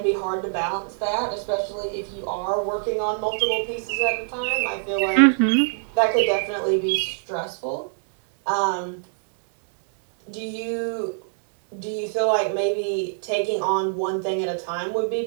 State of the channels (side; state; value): left; silent; digital silence